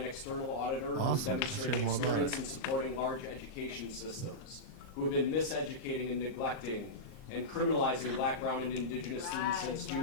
external auditor who has Awesome. demonstrated Share more about experience it. in supporting large education systems, who have been miseducating and neglecting and criminalizing Black, Brown, and Indigenous students since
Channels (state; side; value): late; right; 38 ms